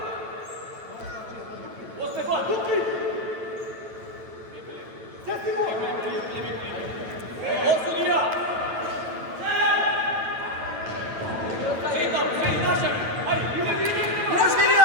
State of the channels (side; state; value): left; late; 9.1 ms